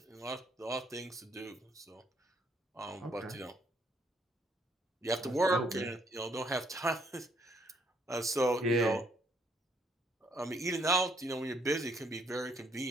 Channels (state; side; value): normal; both; correlation 0.69